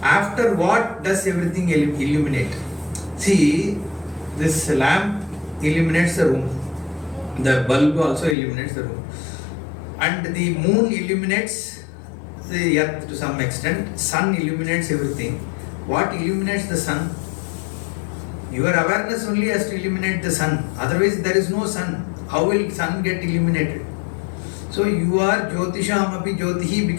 After what does everything illuminate? See, this lamp illuminates the room. The bulb also illuminates the room. And the moon illuminates the earth to some extent. Sun illuminates everything. What illuminates the sun? Your awareness only has to illuminate the sun. Otherwise, there is no sun. How will sun get illuminated? So you are Jyotishamapi Jyotihi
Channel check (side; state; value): right; drops out; at 8.3 s